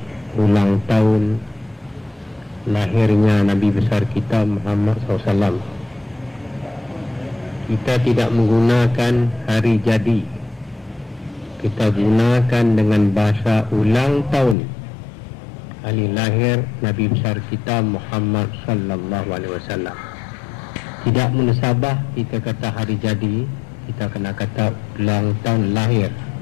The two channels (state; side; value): drops out; right; at 14.6 s